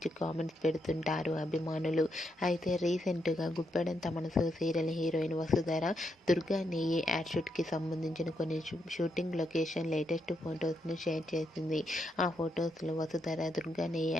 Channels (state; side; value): normal; both; correlation 0.80